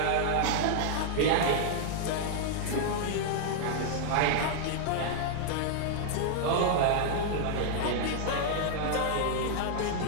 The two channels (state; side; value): different; both; correlation -0.01